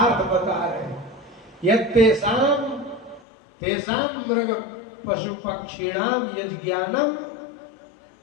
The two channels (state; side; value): drops out; right; at 3.2 s